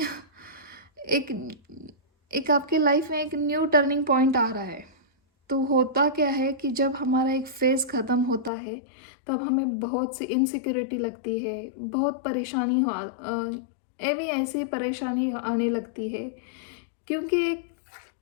एक एक आपके लाइफ में एक न्यू टर्निंग पॉइंट आ रहा है। तो होता क्या है कि जब हमारा एक फ़ेज़ ख़त्म होता है, तब हमें बहुत सी इनसिक्योरिटी लगती है, बहुत परेशानी ऐसी परेशानी आने लगती है, क्योंकि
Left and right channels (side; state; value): right; drops out; at 8.5 s